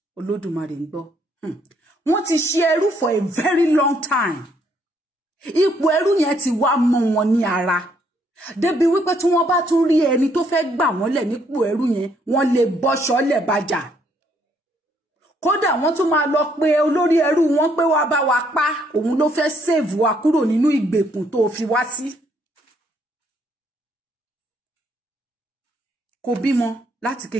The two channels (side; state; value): both; normal; correlation 0.69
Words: Olódùmarè ń gbọ́. Wọ́n ti ṣe ẹrú for a very long time. Ipò ẹrú yẹn ti wá mọ́ wọn ní ara. Débi wípé tí wọ́n bá tún rí ẹni tó fẹ́ gbà wọ́n lẹ̀ nípò ẹrú yẹn, wọ́n lè bọ́ṣọ́ lẹ̀ bàjà. Kódà wọ́n tún máa lọ pé olórí ẹrú wọn pé wá bá wa pa, òun ló fẹ́ save wa kúrò nínú ìgbèkùn tó fi wá sí. Kò bímọ láti